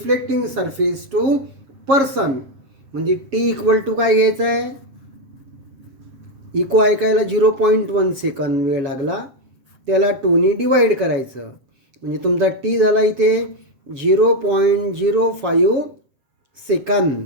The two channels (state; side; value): late; left; 7.5 ms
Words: surface to person, म्हणजे टी इक्वल टू काय घ्यायचं आहे? इको ऐकायला 0.1 सेकंद वेळ लागला, त्याला 2ने डिवाईड करायचं म्हणजे तुमचा टी झाला इथे 0.05 second.